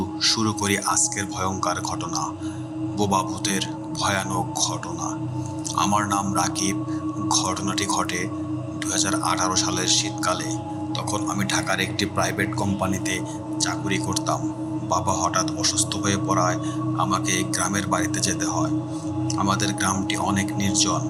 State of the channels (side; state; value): both; identical; correlation 1.00